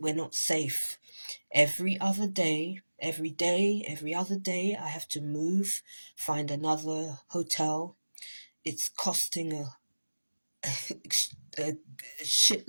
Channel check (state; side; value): inverted; both; correlation -1.00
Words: not safe. Every other day, every other day, I have to move, find another hotel. It's costing a